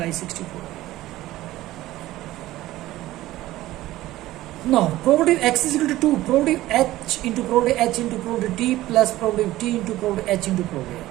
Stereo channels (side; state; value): left; quieter; 16.2 dB